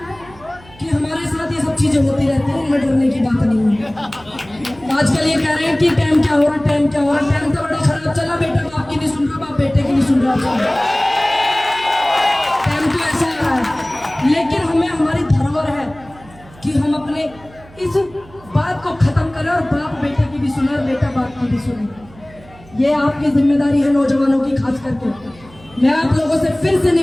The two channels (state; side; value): noise; right; hum, 23 dB below the sound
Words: कि हमारे साथ ये सब चीजें होती रहती हैं, इनमें डरने की बात नहीं है। आजकल ये कह रहे हैं कि टाइम क्या हो रहा, टाइम क्या हो रहा, टाइम तो बड़ा खराब चला, बेटा बाप की नहीं सुन रहा, बाप बेटे की नहीं सुन रहा, टाइम तो ऐसा आ रहा है। लेकिन हमें, हमारी धरोहर है कि हम अपने इस बात को खत्म करें और बाप बेटे की भी सुने और बेटा बाप की भी सुने। ये आपकी जिम्मेदारी है नौजवानों की, खास करके। मैं आप लोगों से फिर से